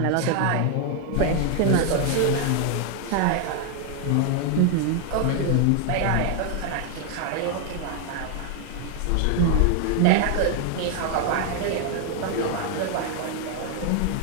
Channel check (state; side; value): different; both; correlation 0.00